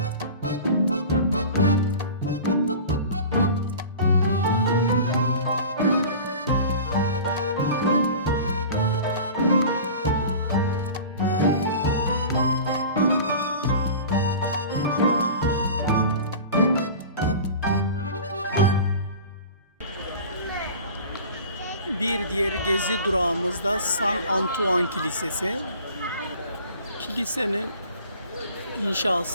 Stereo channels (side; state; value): both; inverted; correlation -0.38